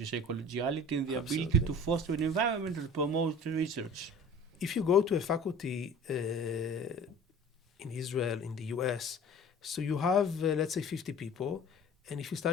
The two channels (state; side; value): normal; both; correlation 0.43